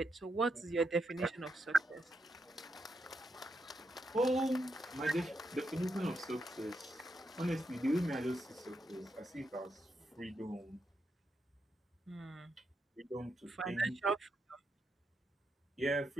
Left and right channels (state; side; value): normal; both; correlation 0.82